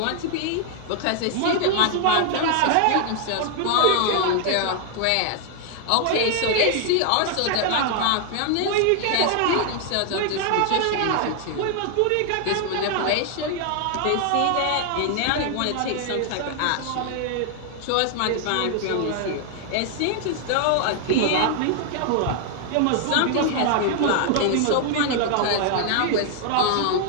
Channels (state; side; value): different; both; correlation 0.00